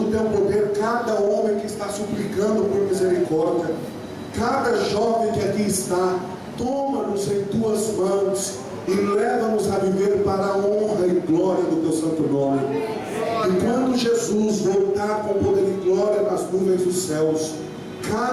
Teu poder cada homem que está suplicando por misericórdia. Cada jovem que aqui está, toma-nos em Tuas mãos e leva-nos a viver para a honra e glória do Teu santo nome. E quando Jesus voltar com poder e glória nas nuvens dos céus,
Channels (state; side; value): identical; both; correlation 1.00